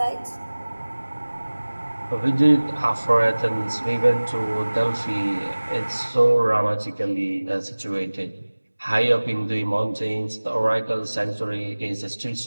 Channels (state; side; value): inverted; both; correlation -1.00